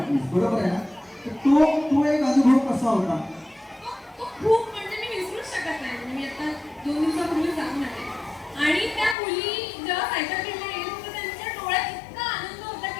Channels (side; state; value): right; drops out; at 9.2 s